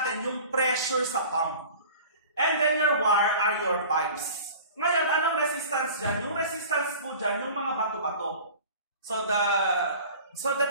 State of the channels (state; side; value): inverted; both; correlation -0.41